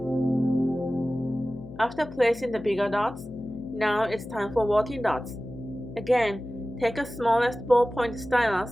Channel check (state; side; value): noise; left; hum, 15 dB below the sound